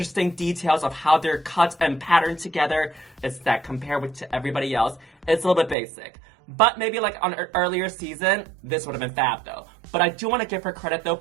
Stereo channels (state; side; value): drops out; left; at 5.8 s